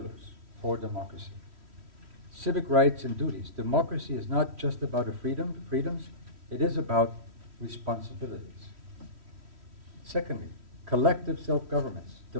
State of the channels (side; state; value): left; late; 3.1 ms